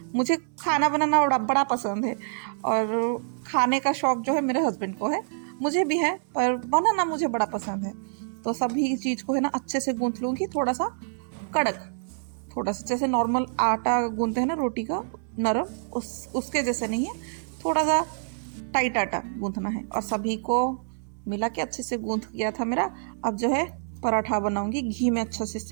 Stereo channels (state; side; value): silent; left; digital silence